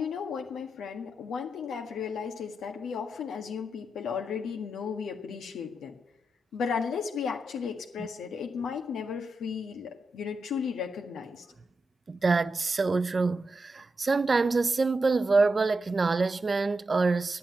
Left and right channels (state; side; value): normal; both; correlation 0.87